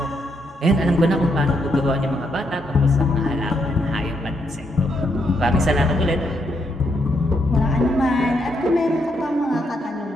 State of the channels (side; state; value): both; normal; correlation 0.77